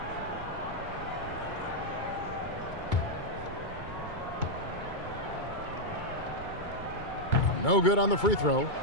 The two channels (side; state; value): right; late; 2.2 ms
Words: No good on the free throw.